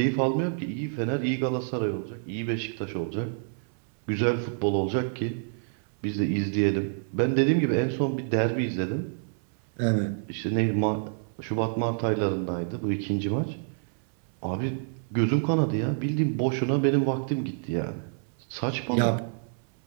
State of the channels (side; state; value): left; silent; 59 dB below the other